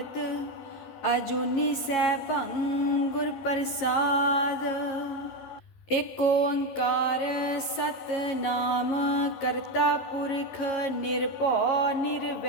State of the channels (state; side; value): late; right; 11 ms